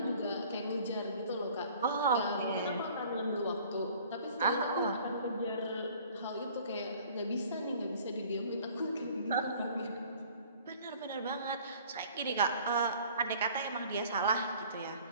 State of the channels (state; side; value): inverted; both; correlation -0.52